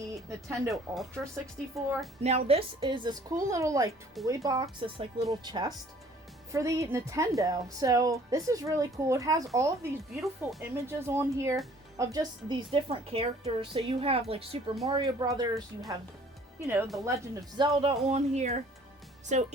Nintendo Ultra 64. Now this is this cool little toy box, this little chest for the Nintendo. So this is really cool. It has all of these beautiful images on here of just these different characters. So you have Super Mario Brothers, you have, The Legend of Zelda on here. So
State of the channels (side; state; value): both; normal; correlation 0.55